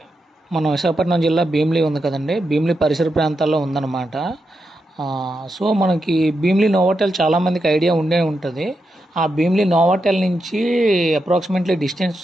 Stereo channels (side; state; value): both; normal; correlation 0.86